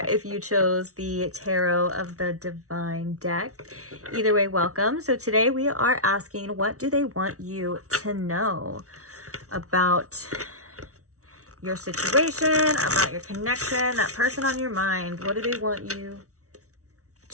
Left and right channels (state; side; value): late; left; 0.65 ms